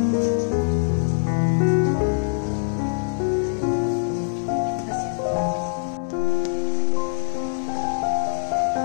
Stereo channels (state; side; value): silent; right; 63 dB below the other